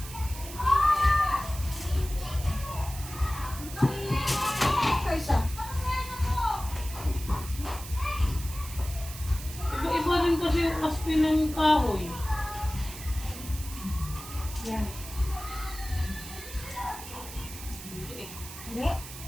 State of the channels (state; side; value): noise; right; hiss, 12 dB below the sound